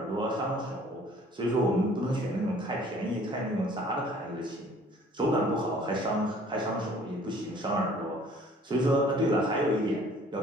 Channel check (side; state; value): both; normal; correlation 0.54